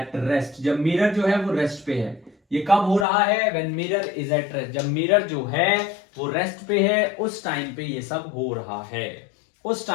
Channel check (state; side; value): drops out; right; at 3.1 s